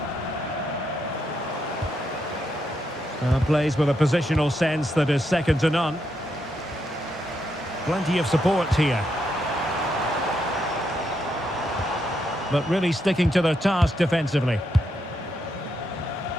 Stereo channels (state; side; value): normal; both; correlation 0.80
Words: Plays with a positional sense that is second to none. Plenty of support here. But really sticking to their task defensively.